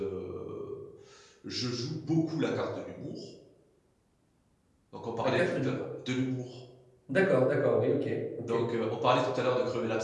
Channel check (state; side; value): identical; both; correlation 1.00